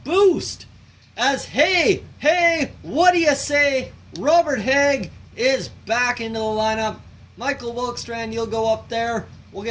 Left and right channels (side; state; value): both; identical; correlation 1.00